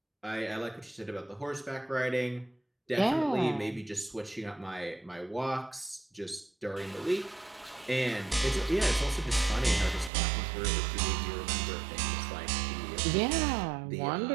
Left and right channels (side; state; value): left; drops out; at 10.1 s